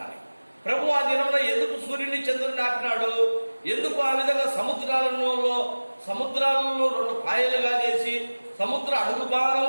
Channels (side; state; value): both; inverted; correlation -1.00